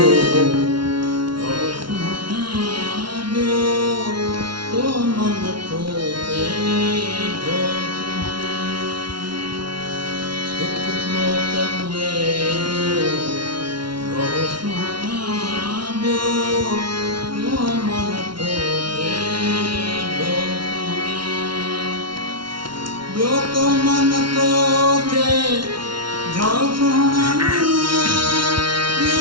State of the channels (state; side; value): late; left; 0.73 ms